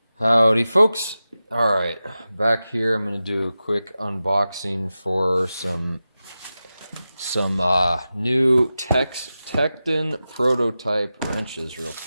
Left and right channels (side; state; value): both; inverted; correlation -0.93